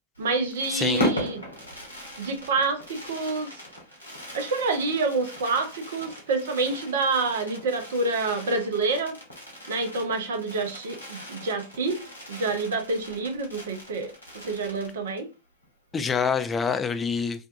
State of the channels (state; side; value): normal; both; correlation -0.14